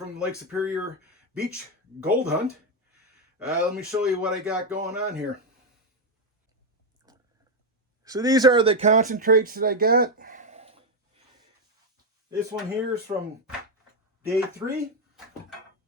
the Lake Superior Beach Gold Hunt. Let me show you what I got going on here. So these are the concentrates that I got. This one here is from day 3.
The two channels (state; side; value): normal; both; correlation 0.04